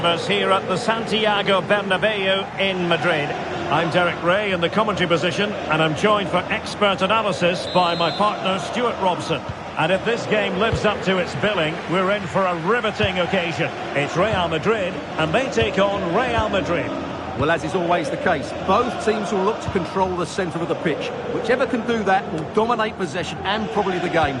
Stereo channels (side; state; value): both; identical; correlation 1.00